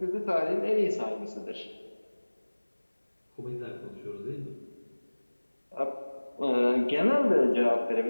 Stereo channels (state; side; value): inverted; both; correlation -1.00